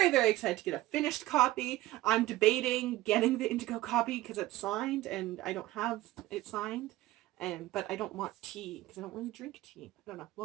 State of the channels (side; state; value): left; quieter; 16.9 dB